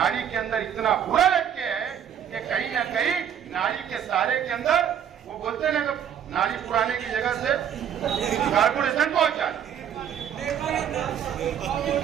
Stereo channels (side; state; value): left; quieter; 9.1 dB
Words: के अंदर इतना बुरा लटके है कि कहीं ना कहीं नाड़ी के सहारे के अंदर वो बोलते हैं ना, नाड़ी पुराने की जगह से कारपोरेशन पहुंचा।